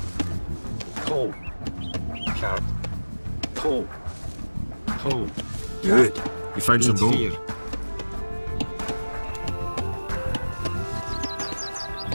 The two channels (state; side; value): inverted; both; correlation -1.00